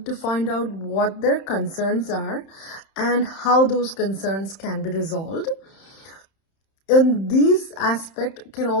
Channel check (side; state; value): right; late; 31 ms